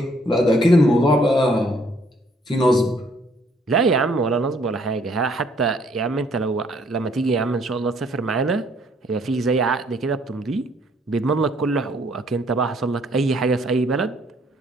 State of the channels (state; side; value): normal; both; correlation 0.65